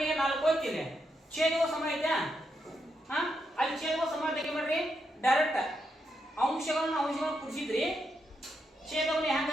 4 ಹೋಗ್ತಿದೆ, ಛೇದವು ಸಮ ಐತೆ. ಅಲ್ಲಿ ಛೇದವು ಸಮ ತೆಗೆ ಮಾಡ್ರಿ, ಡೈರೆಕ್ಟ್ ಅಂಶಗಳನ್ನು ಕುಡಿಸಿದ್ರಿ, ಛೇದವನ್ನು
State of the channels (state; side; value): normal; both; correlation 0.82